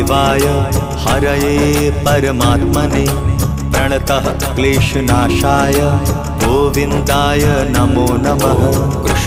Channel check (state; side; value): identical; both; correlation 1.00